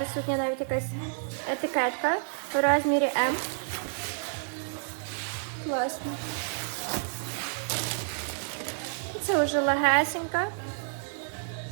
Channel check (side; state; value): left; silent; 58 dB below the other